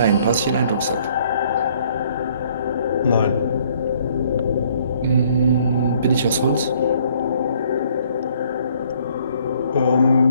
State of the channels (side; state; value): both; inverted; correlation -0.63